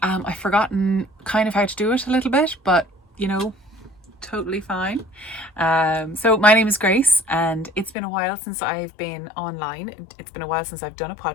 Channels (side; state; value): right; drops out; at 8.0 s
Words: I've forgotten kind of how to do it a little bit, but you know, totally fine. So my name is Grace and it's been a while since I've been online. It's been a while since I've done a